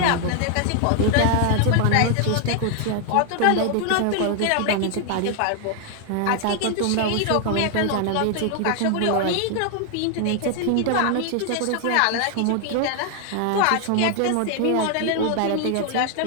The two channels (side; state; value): both; different; correlation 0.00